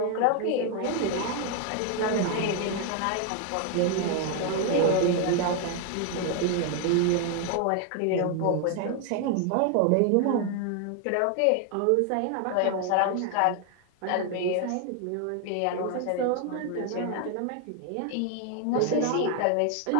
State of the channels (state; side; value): different; both; correlation 0.00